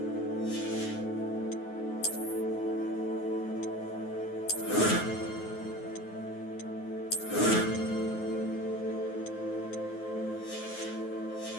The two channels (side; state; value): right; late; 9.5 ms